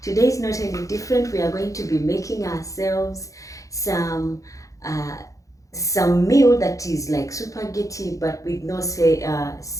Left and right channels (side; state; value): right; late; 0.16 ms